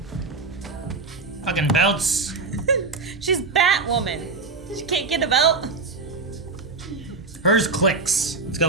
Fucking belts. She's Batwoman. She can't get a belt. Hers clicks. It's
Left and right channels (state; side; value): quieter; left; 4.1 dB